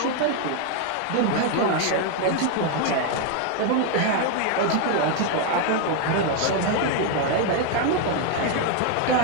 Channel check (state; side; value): different; both; correlation 0.01